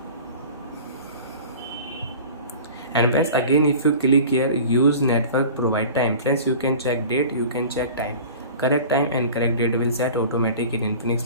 And friends, again if you click here use network provide time, friends, you can check date, you can check time. Correct time and correct date will set automatic in Infinix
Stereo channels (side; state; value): both; inverted; correlation -0.40